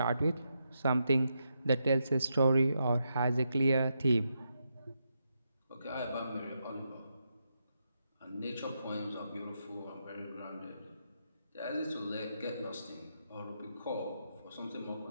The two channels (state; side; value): inverted; both; correlation -0.84